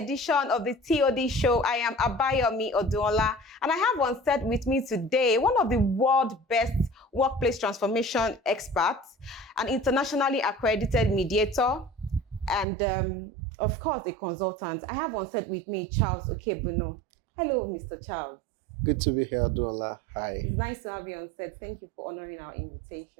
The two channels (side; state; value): left; drops out; at 12.7 s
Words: of the TOD show. I am Abayomi Oduola, and I have on set with me today one of the world's best workplace transformation experts, an internationally accredited mediator, and of course a consultant. I have on set with me Charles Okeibunor. Hello, Mr. Charles. Good to be here, Oduola. Hi. It's nice to have you on set. Thank you for honoring our